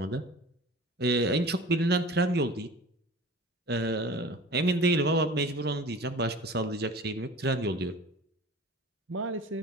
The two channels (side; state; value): both; normal; correlation 0.40